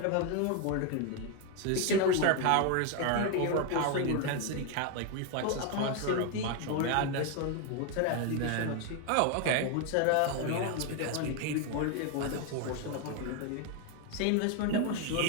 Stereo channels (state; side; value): different; both; correlation 0.01